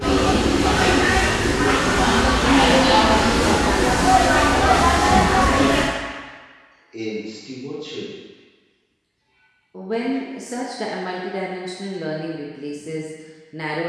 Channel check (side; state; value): both; identical; correlation 1.00